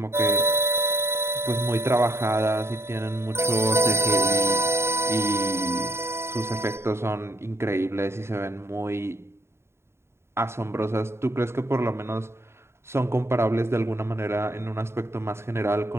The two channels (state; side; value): late; left; 0.12 ms